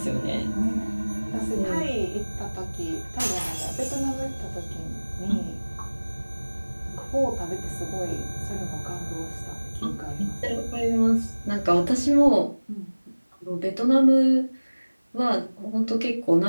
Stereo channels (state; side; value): inverted; both; correlation -1.00